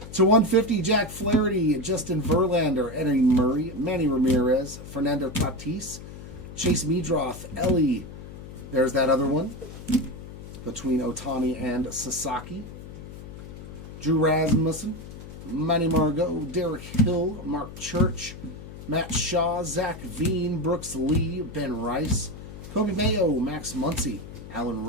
To 150, Jack Flaherty, Justin Verlander, Eddie Murray, Manny Ramirez, Fernando Tatis, Chase Meadroth, Ellie. There's that other one between Otani and Sasaki. Drew Rasmussen, Manny Margot, Derek Hill, Mark Church, Matt Shaw, Zach Veen, Brooks Lee, Ben Rice, Kobe Mayo, Max Muncy, Alan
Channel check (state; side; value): noise; left; hum, 13 dB below the sound